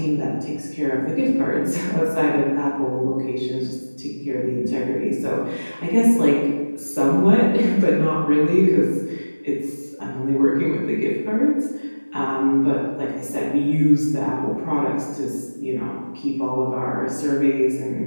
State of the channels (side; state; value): both; inverted; correlation -1.00